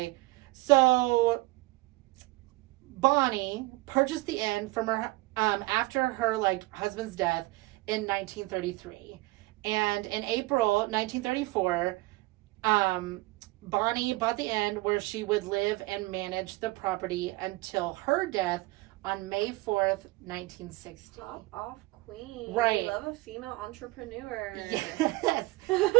So Bonnie purchased the inn from her after her husband's death in 1933, and in April 1934, Bonnie bought the inn where she would live and manage the property until her death on May 4th, 1960. Top off queen. Right. Love a female entrepreneur. Yes.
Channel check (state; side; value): quieter; left; 21.4 dB